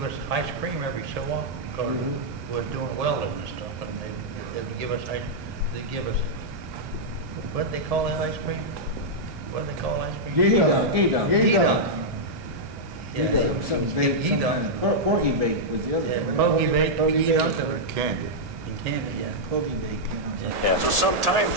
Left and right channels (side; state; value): left; late; 1.8 ms